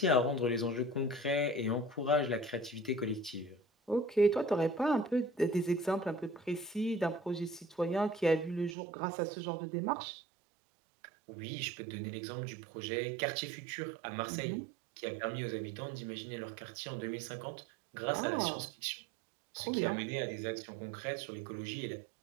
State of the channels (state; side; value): drops out; left; at 8.8 s